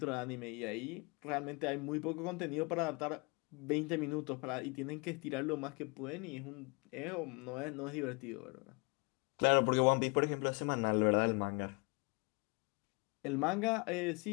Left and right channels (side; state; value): right; quieter; 29.9 dB